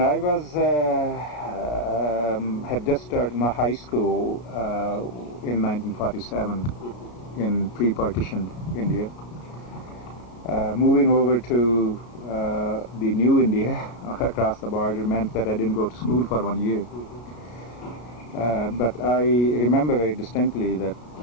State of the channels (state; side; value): late; right; 33 ms